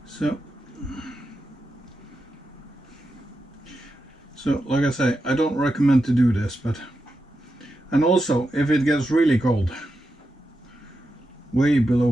So like I say, I don't recommend to do this, but, and also if it gets really cold, way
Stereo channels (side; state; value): both; normal; correlation 0.88